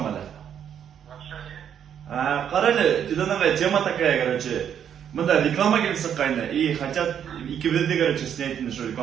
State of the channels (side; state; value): left; quieter; 8.9 dB